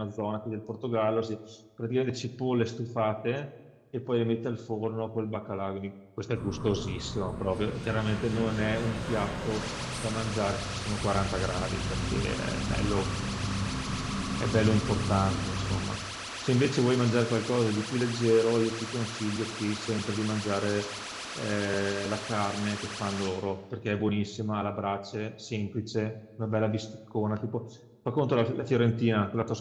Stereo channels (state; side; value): identical; both; correlation 1.00